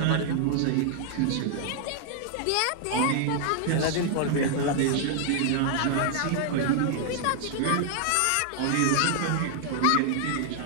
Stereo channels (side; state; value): both; different; correlation 0.00